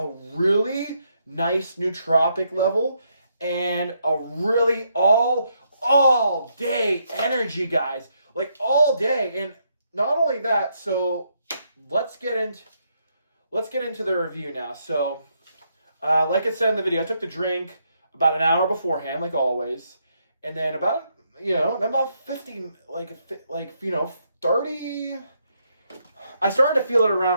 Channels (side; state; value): both; inverted; correlation -0.77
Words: really nice nootropic level and a really all day energy, guys. Like all day. And not only that, so let's get into the review now. So, like I said in the video, I took the drink about an hour beforehand, like always, and then about 50, 30. I started to feel it